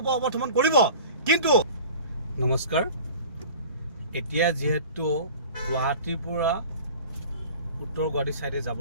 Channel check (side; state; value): both; inverted; correlation -0.41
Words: কৰিব। কিন্তু নমস্কাৰ, এতিয়া যিহেতু গুৱাহাটীৰ পৰা উত্তৰ গুৱাহাটী ছাইডে